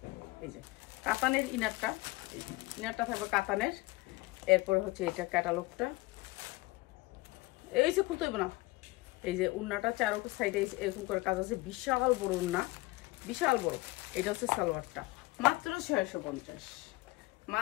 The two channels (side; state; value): right; quieter; 21.9 dB